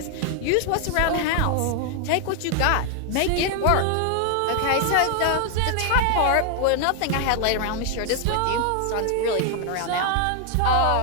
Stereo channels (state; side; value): different; both; correlation 0.00